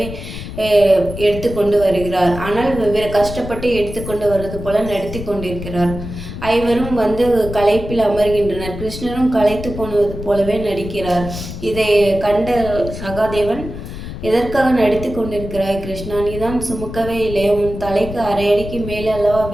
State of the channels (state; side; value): noise; left; rumble, 9 dB below the sound